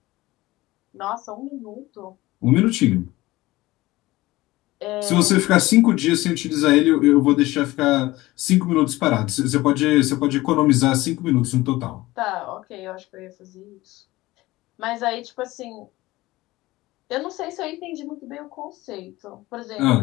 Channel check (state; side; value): quieter; right; 18.7 dB